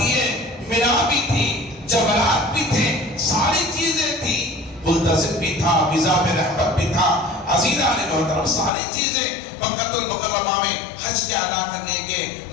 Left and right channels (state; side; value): drops out; right; at 8.7 s